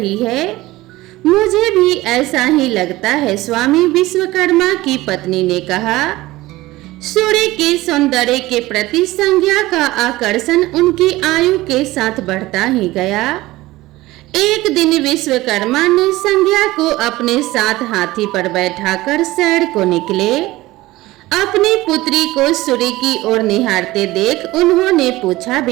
है। मुझे भी ऐसा ही लगता है स्वामी, विश्वकर्मा की पत्नी ने कहा। सूर्य के सौंदर्य के प्रति संज्ञा का आकर्षण उनकी आयु के साथ बढ़ता ही गया। एक दिन विश्वकर्मा ने संज्ञा को अपने साथ हाथी पर बैठाकर सैर को निकले। अपनी पुत्री को सूर्य की ओर निहारते देख उन्होंने पूछा,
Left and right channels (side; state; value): left; quieter; 18.4 dB